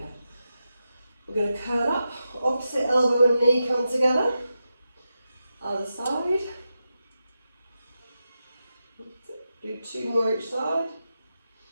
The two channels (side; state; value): both; inverted; correlation -0.89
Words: We're going to curl up, opposite elbow and knee come together. Other side. Do 2 more each side.